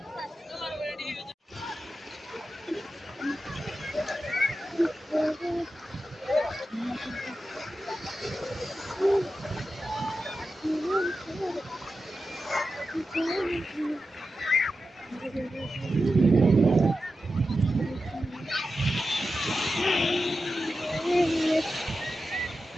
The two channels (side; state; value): both; normal; correlation 0.91